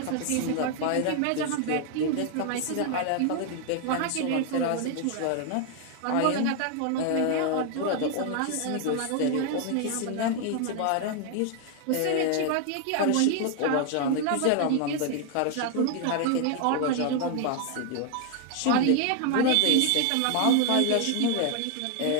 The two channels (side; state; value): both; different; correlation 0.00